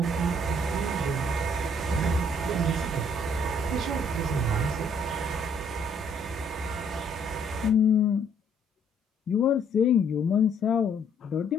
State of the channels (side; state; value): both; normal; correlation 0.65